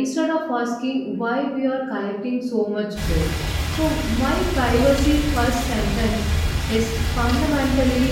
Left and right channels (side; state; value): both; identical; correlation 1.00